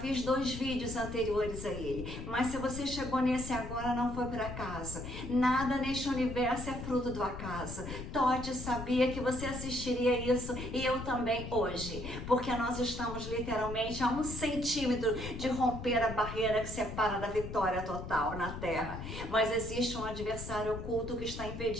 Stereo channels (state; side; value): noise; left; rumble, 8 dB below the sound